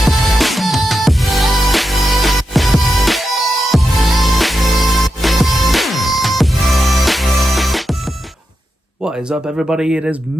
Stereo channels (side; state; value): both; normal; correlation 0.88